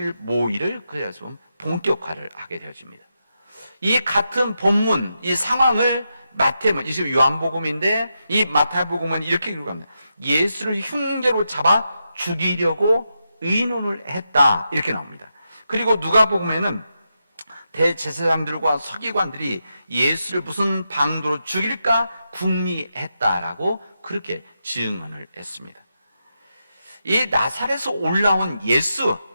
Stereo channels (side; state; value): both; inverted; correlation -0.86